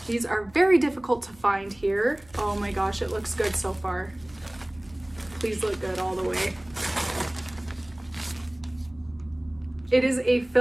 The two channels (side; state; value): right; noise; hum, 26 dB below the sound